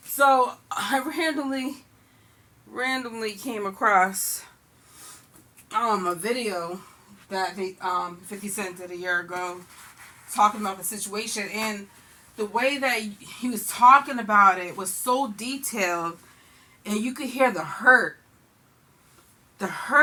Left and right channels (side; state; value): both; identical; correlation 1.00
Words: So I randomly came across a video that they 50 Cent did a year ago talking about the situation, and the way that he was talking about it was so detailed, and you could hear the hurt